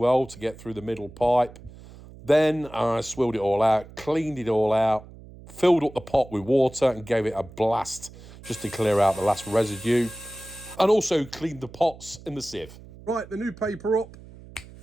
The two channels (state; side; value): noise; right; hum, 19 dB below the sound